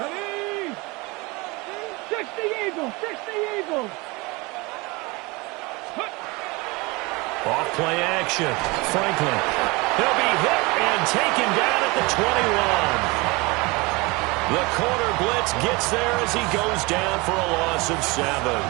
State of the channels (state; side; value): quieter; left; 25.2 dB